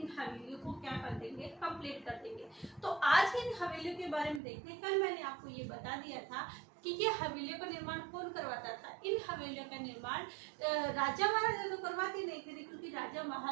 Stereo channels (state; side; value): drops out; left; at 4.4 s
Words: हवेलियों को क्या कर देंगे, कंप्लीट कर देंगे। तो आज इन हवेलियों के बारे में देखते हैं। कल मैंने आपको ये बता दिया था कि ये हवेलियों का निर्माण कौन करवाता था। इन हवेलियों का निर्माण राजा महाराजा तो करवाते नहीं थे, क्योंकि राजा